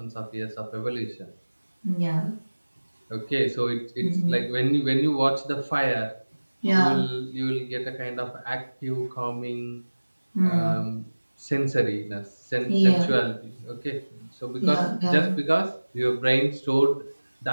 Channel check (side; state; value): both; inverted; correlation -1.00